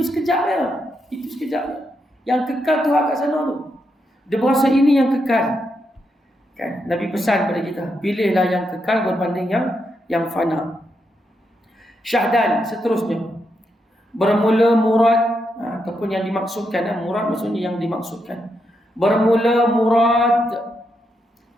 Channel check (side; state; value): both; normal; correlation 0.82